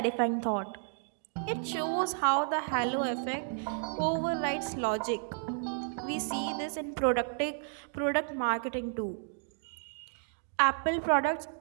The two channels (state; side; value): silent; left; digital silence